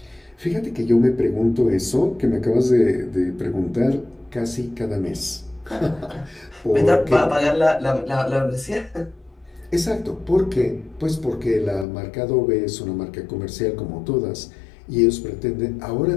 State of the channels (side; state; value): right; drops out; at 11.9 s